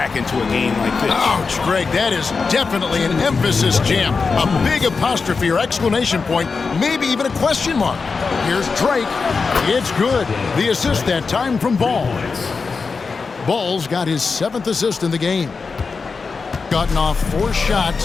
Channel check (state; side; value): quieter; right; 4.7 dB